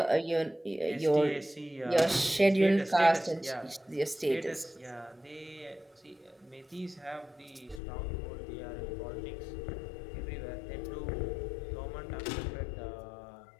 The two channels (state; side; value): drops out; right; at 7.8 s